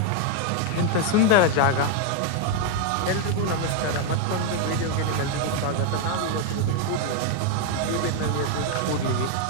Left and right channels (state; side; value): different; both; correlation 0.01